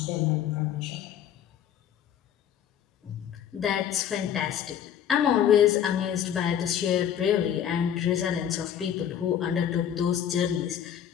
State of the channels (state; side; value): quieter; right; 9.5 dB